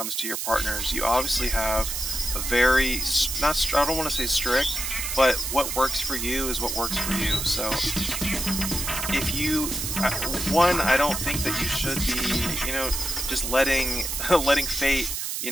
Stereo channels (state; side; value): noise; right; hiss, 3 dB below the sound